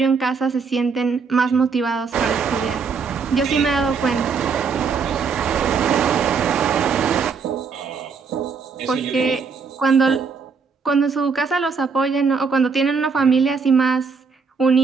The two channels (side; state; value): left; quieter; 5.4 dB